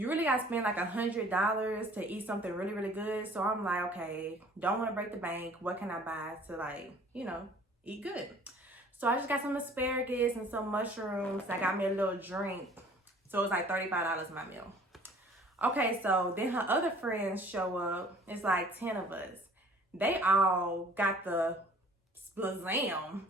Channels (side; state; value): both; normal; correlation 0.52